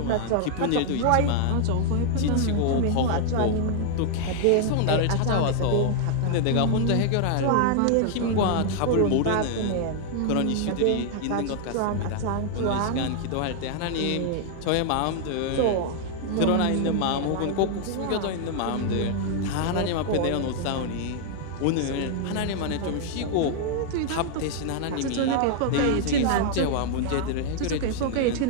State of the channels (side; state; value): both; different; correlation 0.00